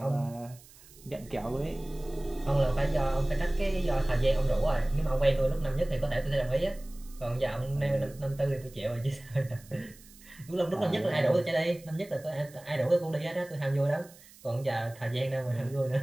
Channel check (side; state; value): right; noise; hiss, 23 dB below the sound